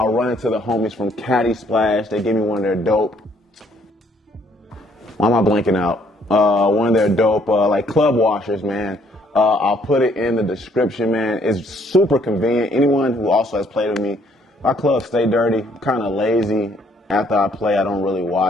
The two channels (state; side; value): normal; both; correlation 0.65